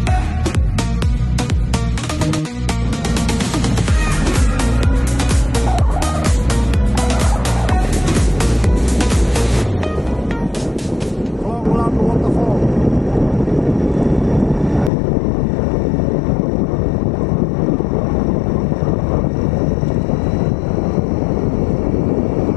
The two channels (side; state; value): right; drops out; at 14.9 s